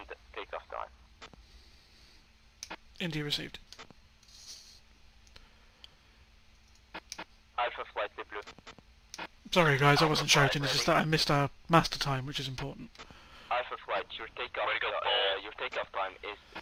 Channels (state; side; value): identical; both; correlation 1.00